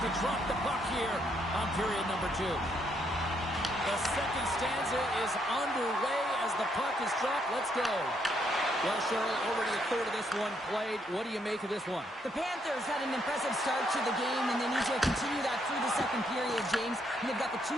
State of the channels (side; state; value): both; normal; correlation 0.74